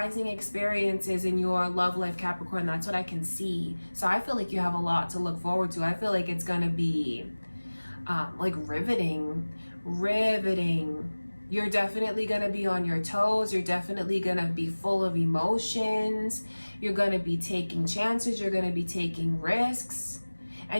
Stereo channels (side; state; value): both; inverted; correlation -1.00